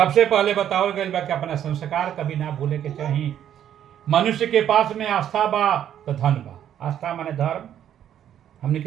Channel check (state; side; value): quieter; left; 10.3 dB